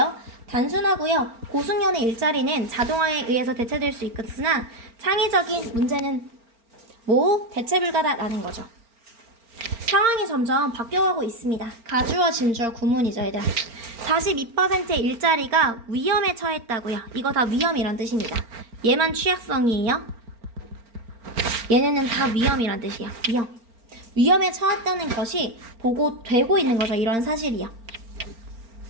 단순하고요. 고승연의 일자리는 자동화에 의해서 대체될 수 있으나 창의적인 문제는 대체 불가다라는 거죠. 상황이 점점 바뀌어가고 있습니다. 가주어, 진주어, 구문이죠, 얘들아. 42%의 일자리가 위험에 처했다고요. 이거 다 위험이란 뜻입니다. 얘만 취약성이에요. 얘네는 다 위험이란 뜻이에요. 위험에 처했다는 것이 보고되고 있는 거죠. 이런 사실이요.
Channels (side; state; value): left; late; 4.4 ms